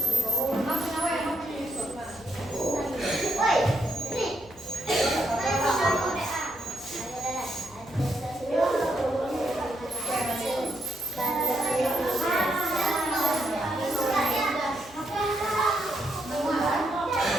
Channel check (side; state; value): left; noise; hum, 22 dB below the sound